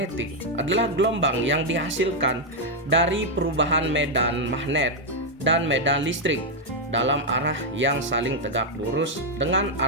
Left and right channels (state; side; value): normal; both; correlation 0.00